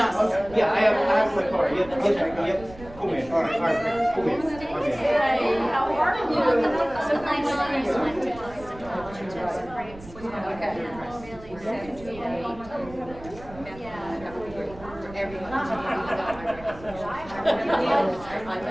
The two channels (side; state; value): right; noise; rumble, 18 dB below the sound